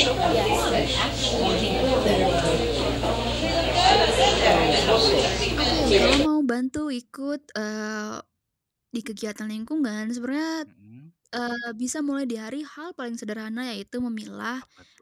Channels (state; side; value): identical; both; correlation 1.00